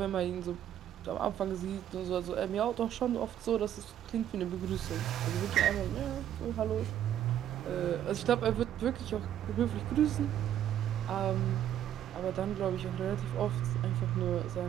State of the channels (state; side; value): quieter; left; 10.9 dB